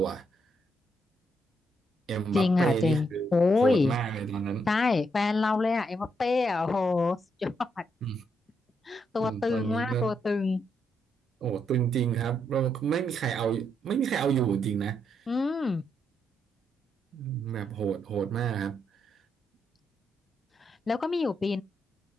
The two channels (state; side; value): normal; both; correlation 0.78